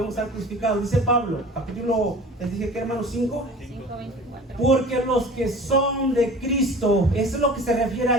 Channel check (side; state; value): both; normal; correlation 0.42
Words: estar crucificados. Dice Pablo, capítulo, les dije que, hermanos, 5. 5:24. Porque los que son de Cristo, eso es lo que se refiere